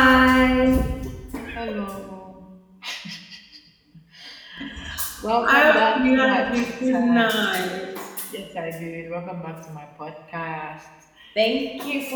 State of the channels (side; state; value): both; identical; correlation 1.00